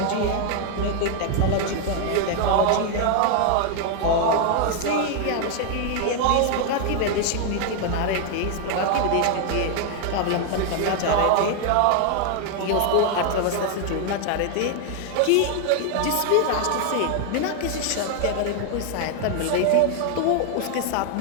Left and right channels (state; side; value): different; both; correlation 0.00